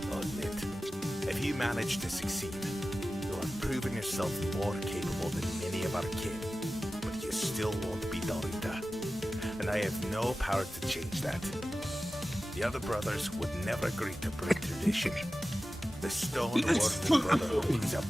I'll admit. If you manage to succeed, you'll have proven yourself more capable than many of our kin. But you still won't be Dalrita. And I have no power to change that. The other brothers would never agree to break tradition. The StoneWarden Brotherhood is a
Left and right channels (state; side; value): normal; both; correlation 0.95